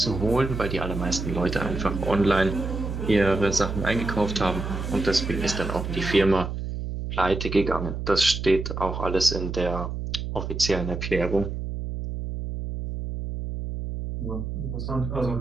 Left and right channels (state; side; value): noise; right; hum, 5 dB below the sound